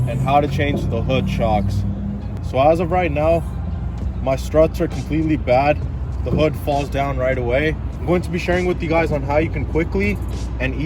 and how to change the hood shocks. So as of right now, my struts are completely bad. The hood falls down right away. I'm going to be sharing with you guys on how you can quickly and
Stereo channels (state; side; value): identical; both; correlation 1.00